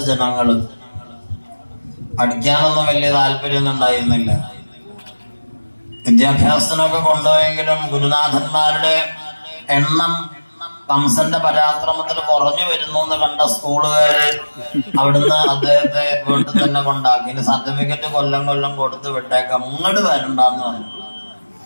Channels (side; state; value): both; inverted; correlation -1.00